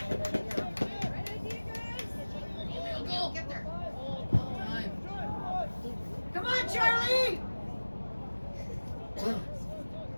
Go. Get there. Well done. Come on, Charlie.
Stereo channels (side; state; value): both; inverted; correlation -1.00